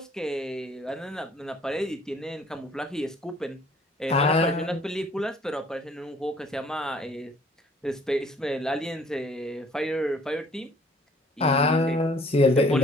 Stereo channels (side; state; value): both; normal; correlation 0.57